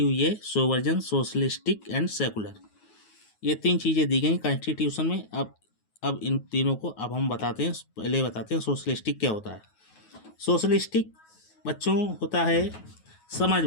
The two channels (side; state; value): right; late; 9.4 ms